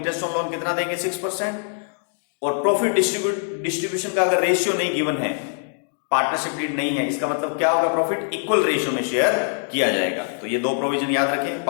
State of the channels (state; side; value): silent; right; digital silence